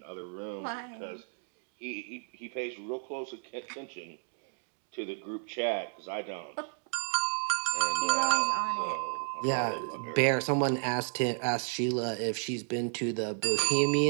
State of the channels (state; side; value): silent; left; 56 dB below the other